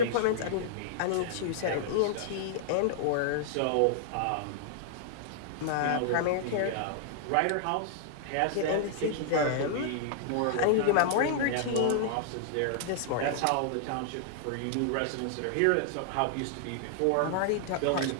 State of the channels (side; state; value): both; different; correlation -0.01